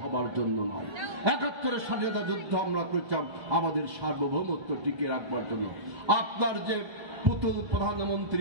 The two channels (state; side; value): late; left; 1.2 ms